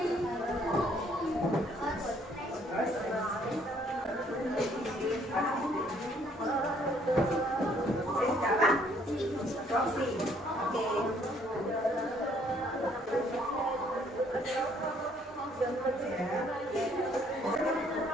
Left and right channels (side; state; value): both; normal; correlation 0.64